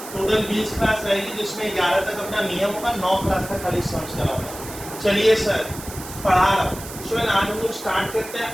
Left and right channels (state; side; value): noise; right; hiss, 13 dB below the sound